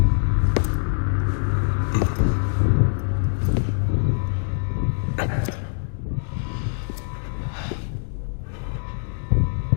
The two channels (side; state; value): right; silent; digital silence